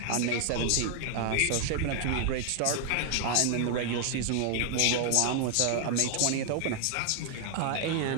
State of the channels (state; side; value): different; both; correlation 0.00